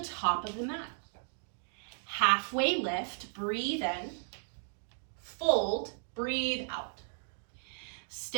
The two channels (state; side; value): silent; left; digital silence